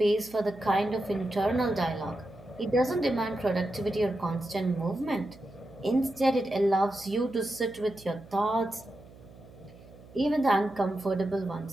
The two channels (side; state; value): right; noise; hum, 21 dB below the sound